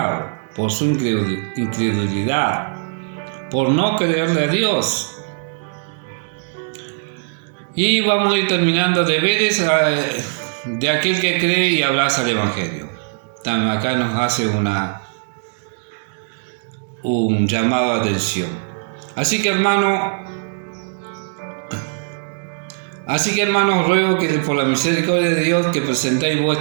por su incredulidad, por no creerle a Dios. Y vamos a ir terminando deberes de aquel que cree y abraza el Evangelio. También acá nos hace un llamado a atención. Así que hermanos, ruego que por la misericordia de Dios que presentéis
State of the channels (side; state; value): left; silent; digital silence